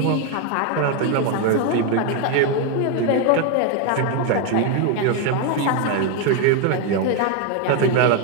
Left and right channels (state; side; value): different; both; correlation 0.01